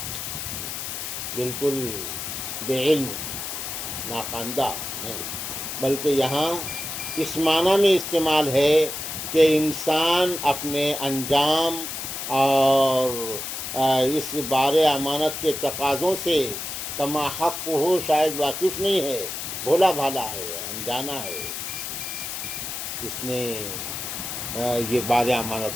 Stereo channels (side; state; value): left; noise; hiss, 5 dB below the sound